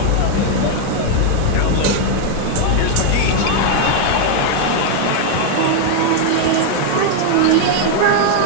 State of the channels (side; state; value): both; different; correlation 0.00